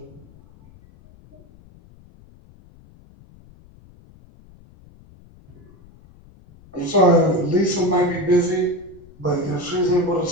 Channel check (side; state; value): left; noise; rumble, 25 dB below the sound